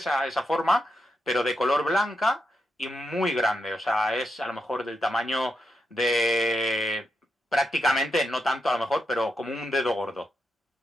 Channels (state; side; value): normal; both; correlation 0.84